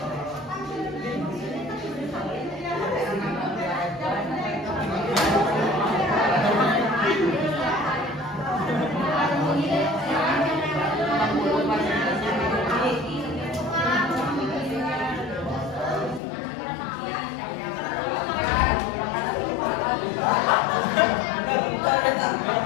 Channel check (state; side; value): drops out; right; at 16.2 s